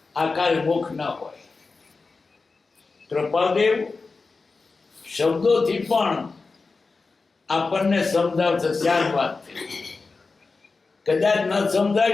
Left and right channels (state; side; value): quieter; right; 4.1 dB